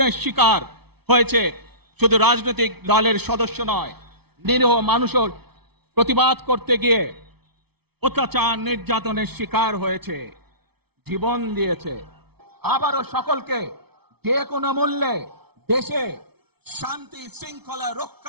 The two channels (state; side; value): late; left; 0.97 ms